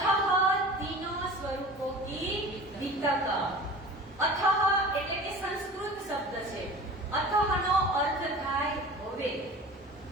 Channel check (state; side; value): normal; both; correlation 0.39